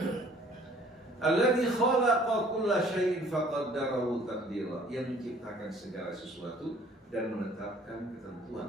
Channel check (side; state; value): both; normal; correlation 0.55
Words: Alladzi khalaqa kulla syai'in faqaddarahu taqdira. Yang menciptakan segala sesuatu dan menetapkan